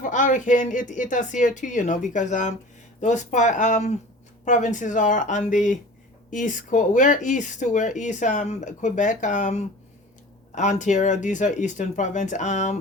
hurricane. It us here too, you know, because those provinces are on the east coast. We're east too. We're east Quebec, Ontario. These are eastern province.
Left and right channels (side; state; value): both; normal; correlation 0.40